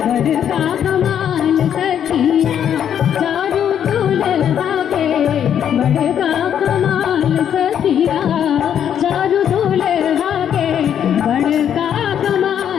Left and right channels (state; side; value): quieter; right; 9.2 dB